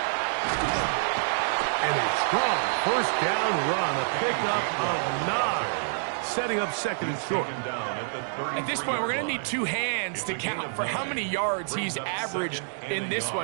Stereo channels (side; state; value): left; silent; digital silence